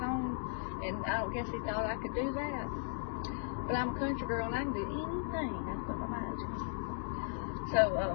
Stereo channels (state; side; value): silent; right; digital silence